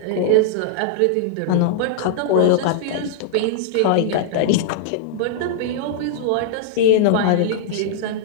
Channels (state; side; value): different; both; correlation -0.02